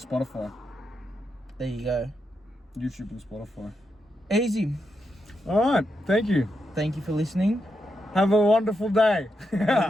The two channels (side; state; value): both; normal; correlation 0.84